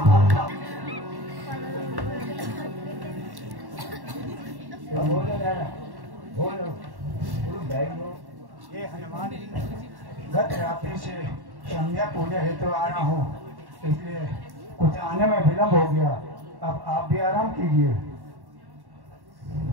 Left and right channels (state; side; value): late; left; 1.1 ms